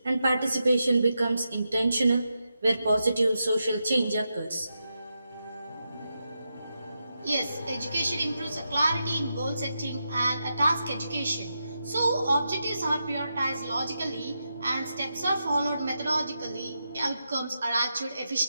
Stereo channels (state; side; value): inverted; both; correlation -0.87